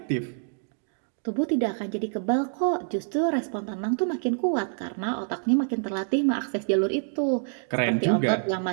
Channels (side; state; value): left; silent; digital silence